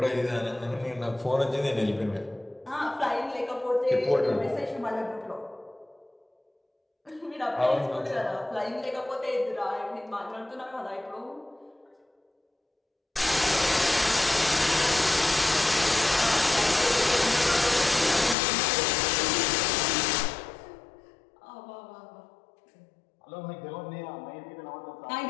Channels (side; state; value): right; drops out; at 18.4 s